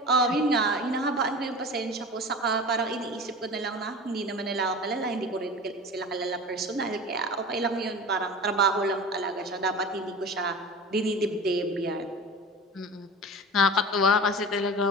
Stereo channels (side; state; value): both; normal; correlation 0.34